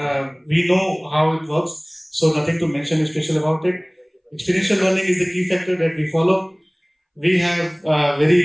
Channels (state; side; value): identical; both; correlation 1.00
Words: We know how it works, so nothing to mention special about it. Experiential learning is the key factor that we follow. We have